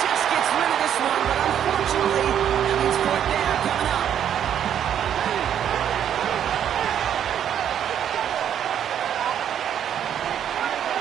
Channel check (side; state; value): left; quieter; 9.5 dB